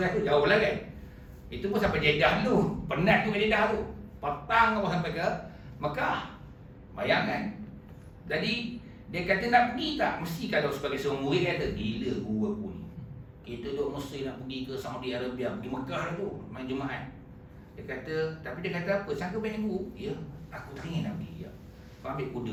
tu jauh lah kan. Itu pun sampai Jeddah dulu. Penat tu ke Jeddah tu. Petang apa sampai ke Mekah. Bayangkan. Jadi dia kata nak pergi tak? Mesti kalau sebagai seorang murid kata, gila guru aku ni. Kita duk mesti nak pergi ke Saudi Arabia, pergi Mekah tu, main Jumaat. Dia kata, tapi dia kata apa? Sangka banyak guru? Ya, aku tak ingin nak pergi. Ya. Kau ambil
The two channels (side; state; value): both; identical; correlation 1.00